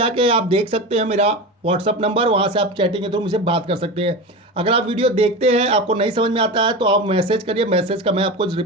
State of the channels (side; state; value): both; normal; correlation 0.25